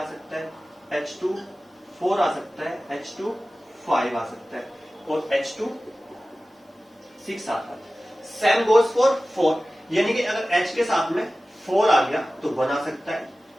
सकता है, H2 4 आ सकता है, H2 5 आ सकता है, और H2 6 आता है। सेम गोज फॉर 4, यानी कि अगर H के साथ में 4 आ गया तो 1 आ सकता है,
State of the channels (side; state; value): both; normal; correlation 0.96